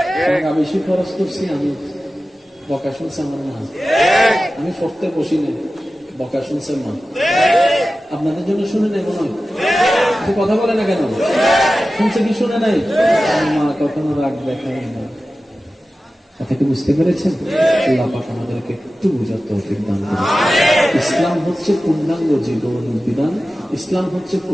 টাকা বেশি খরচ করছি, আমি বকা শুনছে আমার মা, আমি পড়তে বসি না, বকা শুনছে মা। আপনাদের জন্য শুনে নাই মনে হয়? কথা বলে না কেন? শুনছে কি শুনে নাই? মা কখনো রাগ দেখায় না। কথাকে বুঝতে পেরেছেন? আল্লাহ পাক আমাদেরকে একটু বুঝার তৌফিক দান করুন। ইসলাম হচ্ছে পূর্ণাঙ্গ জীবন বিধান। ইসলাম হচ্ছে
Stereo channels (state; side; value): normal; both; correlation 0.95